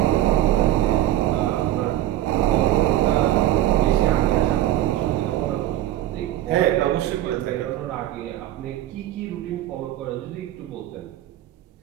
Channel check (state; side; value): quieter; left; 13.6 dB